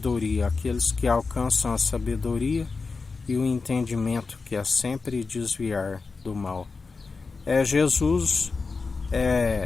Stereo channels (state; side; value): quieter; right; 4.4 dB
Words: aqueles que alcançam a sabedoria e o entendimento, que é sempre desviar do mal. Jesus